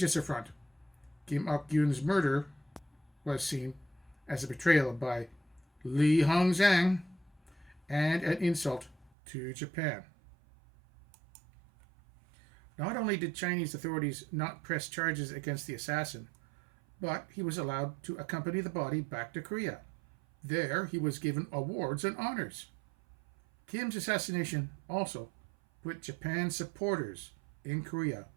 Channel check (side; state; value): left; drops out; at 9.1 s